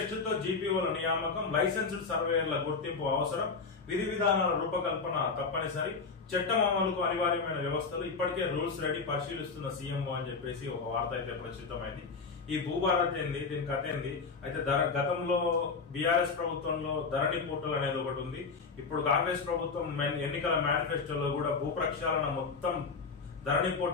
తో జీపీఓల నియామకం, లైసెన్స్డ్ సర్వేయర్ల గుర్తింపు అవసరం, విధి విధానాల రూపకల్పన తప్పనిసరి, చట్టం అమలుకు అనివార్యమైన వ్యవస్థలు, ఇప్పటికే రూల్స్ రెడీ, పరిశీలిస్తున్న సీఎంఓ అని చెప్పేసి ఒక వార్త అయితే ప్రచురితమైంది. ఈ భూభారతి ఏంది, దీని కథ ఏంది అయితే గతంలో బీఆర్ఎస్ ప్రభుత్వంలో ధరణి పోర్టల్ అనేది ఒకటి ఉంది. ఇప్పుడు కాంగ్రెస్ ప్రభుత్వం ఎన్నికల మేనిఫెస్టోలో కూడా భూ ప్రక్షాళన మొత్తం ధరణి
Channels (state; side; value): quieter; right; 4.7 dB